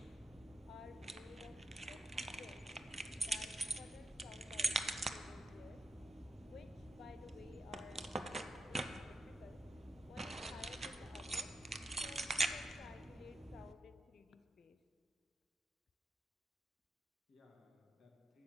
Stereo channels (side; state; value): both; normal; correlation 0.82